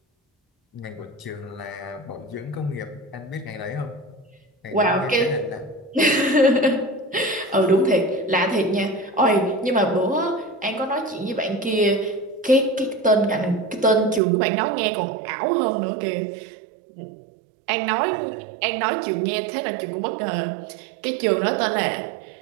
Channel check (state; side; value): drops out; left; at 14.2 s